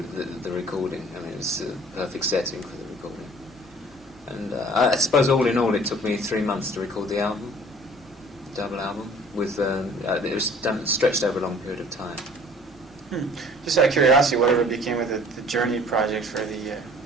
recording. I mean, it was a perfect setting for the recording. And I suppose all in all, it took me 3 months to record the album, double album. With it was stretched over a long period of time. Just out of curiosity, whatever became of the Journey project for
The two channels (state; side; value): normal; both; correlation 0.51